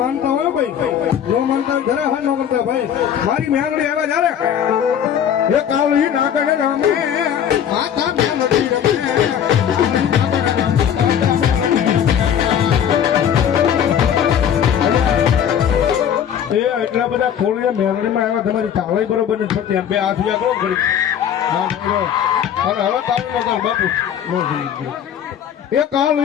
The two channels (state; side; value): quieter; right; 9.1 dB